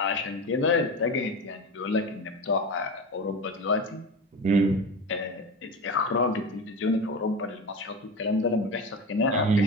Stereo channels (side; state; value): both; normal; correlation 0.26